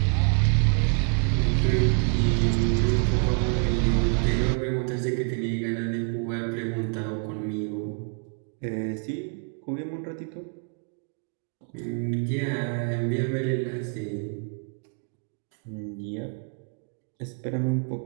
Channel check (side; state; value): left; quieter; 39.5 dB